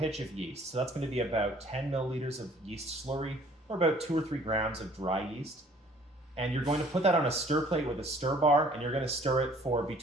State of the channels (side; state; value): both; normal; correlation 0.56